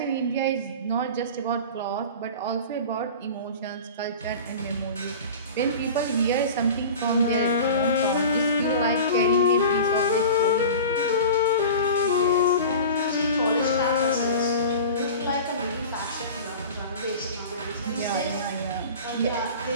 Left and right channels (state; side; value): inverted; both; correlation -0.35